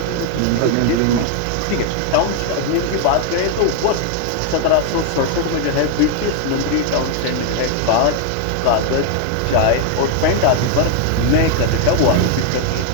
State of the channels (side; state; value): both; different; correlation 0.00